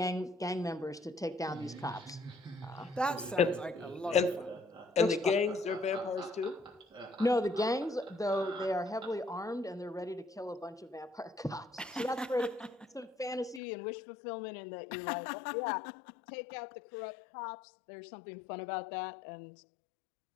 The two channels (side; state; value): right; drops out; at 13.6 s